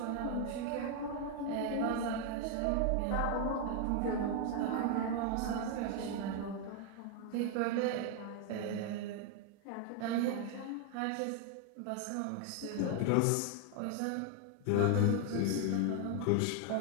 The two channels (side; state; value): both; different; correlation 0.01